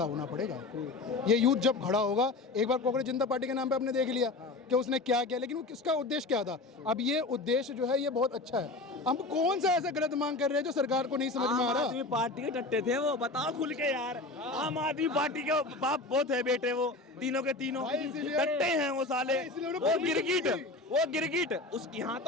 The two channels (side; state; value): right; quieter; 3.2 dB